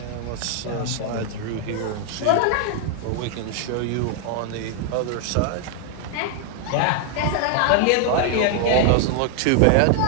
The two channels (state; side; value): different; both; correlation 0.00